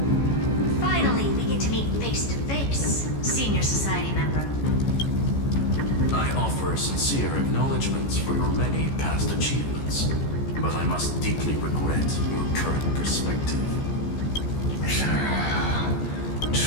offer sincere acknowledgments for your many past achievements, but I must deeply regret your current perspective.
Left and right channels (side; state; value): right; late; 14 ms